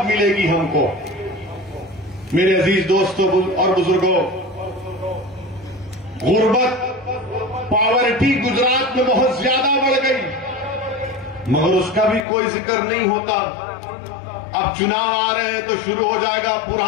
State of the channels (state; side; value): drops out; right; at 12.2 s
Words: मिलेगी हमको। मेरे अजीज दोस्तों और बुजुर्गों, गुर्बत, पॉवर्टी गुजरात में बहुत ज्यादा बढ़ गई, मगर उसका भी कोई जिक्र नहीं होता। अब चुनाव आ रहे हैं तो शुरू हो जाएगा